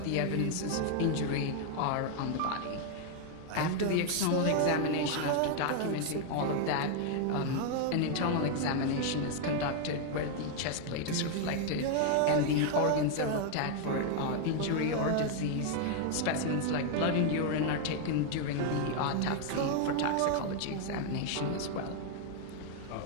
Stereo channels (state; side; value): different; both; correlation 0.00